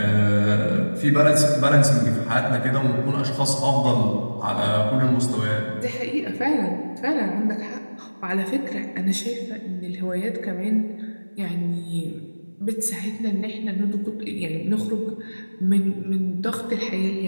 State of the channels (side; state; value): both; inverted; correlation -1.00